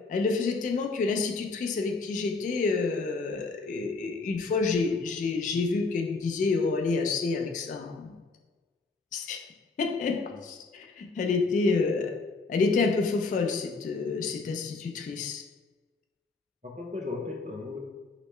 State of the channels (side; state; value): right; quieter; 3.8 dB